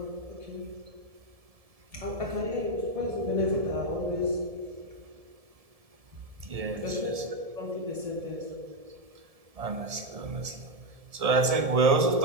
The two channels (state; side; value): late; left; 1.7 ms